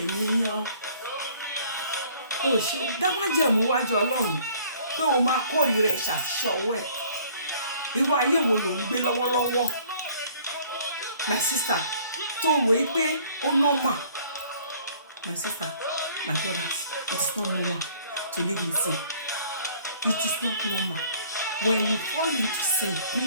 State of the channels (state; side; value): inverted; both; correlation -0.56